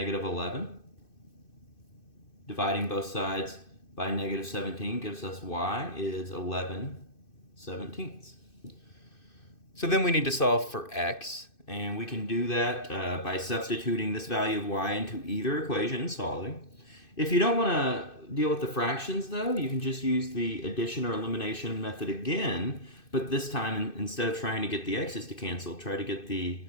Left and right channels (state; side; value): late; right; 2.6 ms